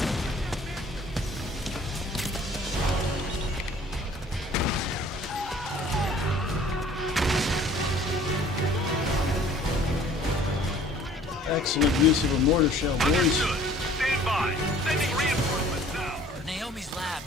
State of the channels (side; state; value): both; normal; correlation 0.53